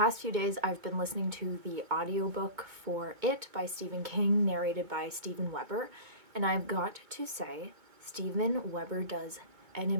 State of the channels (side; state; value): left; late; 2.2 ms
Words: few days, I've been listening to the audiobook for It by Stephen King, narrated by Steven Weber, and I've got to say, Steven Weber does an